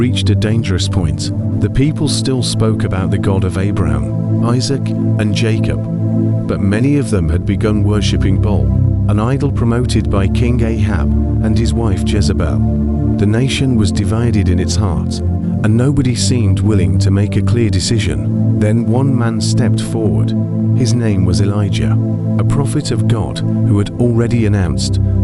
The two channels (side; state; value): both; identical; correlation 1.00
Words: a dangerous point. The people still spoke about the God of Abraham, Isaac, and Jacob, but many of them had begun worshipping Baal, an idol promoted by King Ahab and his wife Jezebel. The nation was divided in its heart, and nobody seemed willing to make a clear decision. Then one man stepped forward. His name was Elijah, a prophet of God who had already announced